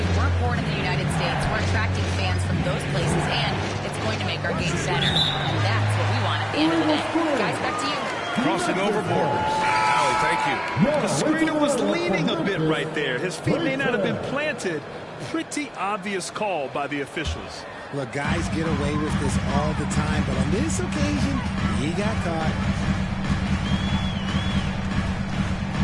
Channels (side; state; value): both; identical; correlation 1.00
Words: weren't born in the United States, we're attracting fans from those places, and it's going to make our game better. And that's what we want at the end of the day. Guys, back to you. Crossing over borders. Allie, thank you. The screener was leaning a bit right there. His feet may not have been planted. Pretty obvious call by the officials. Look, guys get away with this all the time, but on this occasion, he got caught.